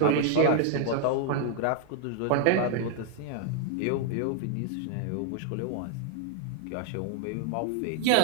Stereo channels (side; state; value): both; different; correlation 0.00